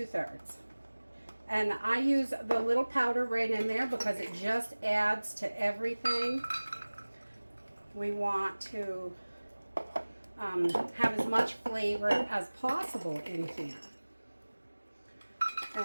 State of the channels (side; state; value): both; inverted; correlation -1.00